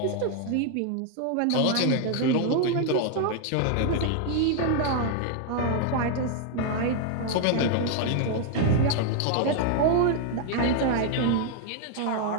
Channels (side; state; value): both; different; correlation 0.00